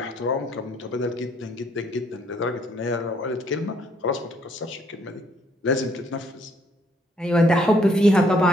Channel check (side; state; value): both; normal; correlation 0.67